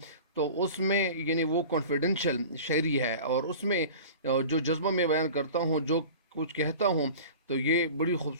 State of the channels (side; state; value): both; inverted; correlation -0.39